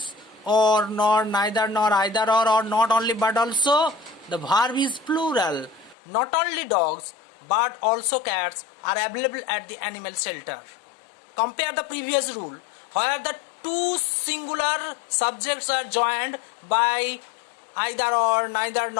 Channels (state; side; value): drops out; right; at 6.0 s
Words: or, nor, neither, nor, either, or not only but also, the verb is plural. Not only dogs but also cats are available at the animal shelter. Compare the previous rule where the two singular subjects are joined by either or, neither